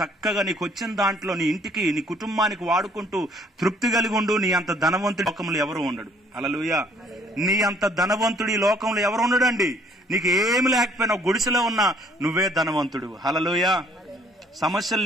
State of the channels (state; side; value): normal; both; correlation 0.61